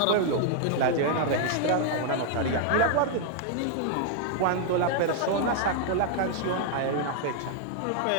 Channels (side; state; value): both; different; correlation 0.00